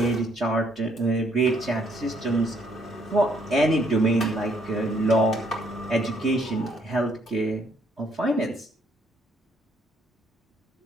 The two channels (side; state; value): both; normal; correlation 0.68